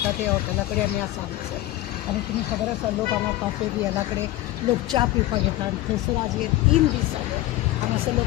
ते हॉटेलाकडे आम्ही आज आलो सर. आणि तुम्ही खबर आसा लोक हांगा काफे बी ह्या कडेन लोक च्या पिवपाक येता आनी थंयसर आज हे 3 दीस जाले आनी असे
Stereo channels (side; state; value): right; quieter; 16.2 dB